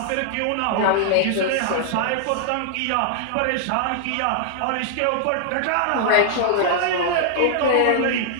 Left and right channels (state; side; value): different; both; correlation -0.01